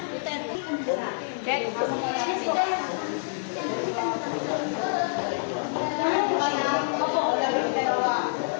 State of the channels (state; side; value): silent; right; digital silence